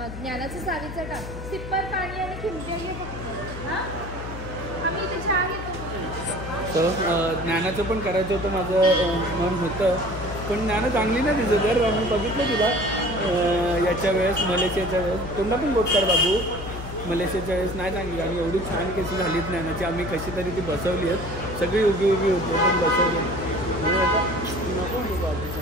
ज्ञानाचं सारीचं टाक. सिप्पर पाणी आणि खिमटे घे फक्त. हा आम्ही इथे चहा घेतो. तर ज्ञानाचं पण करायचं होतं माझं मन होतं, पण ज्ञानं चांगली नाही दिसत. जर आम्ही बघितलं तिला याच्या वेळेस मलेशियाच्या वेळेस. तोंडा पण बोलतात बाबू. मलेशियाच्या वेळेस नाही चांगली. आणि एवढी छान केस झालीत ज्ञानाची. आम्ही कशी तरी ती बसवली आहेत. सगळी उभी उभी होती पण बसवली.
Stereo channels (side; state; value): left; noise; hum, 10 dB below the sound